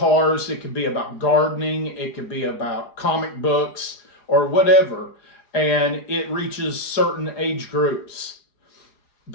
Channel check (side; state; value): right; late; 4.8 ms